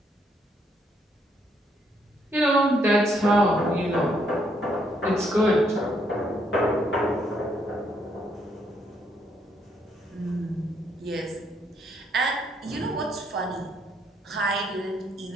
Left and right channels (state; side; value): normal; both; correlation 0.72